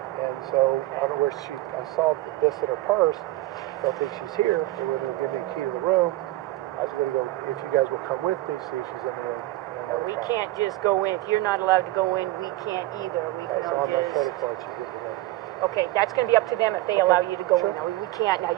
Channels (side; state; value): left; quieter; 17.4 dB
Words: And so I don't know where I saw this in her purse. Don't think she's here. They were going to give me a key to the room. I was going to go, if you guys will come with me, see if she's in the room. We can't just go in. If you're not allowed to go in, we can't either. We can That's on my just. credit card. She gives me. Okay, that's going to be up to them if they allow you to go Sure. in. Now, we can't. Now,